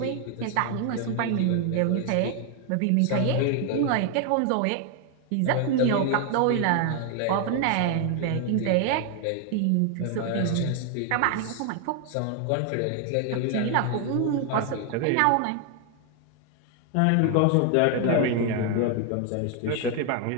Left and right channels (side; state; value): both; different; correlation 0.00